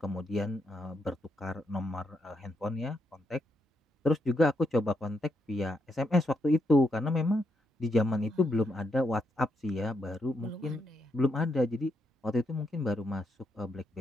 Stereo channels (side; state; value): both; normal; correlation 0.80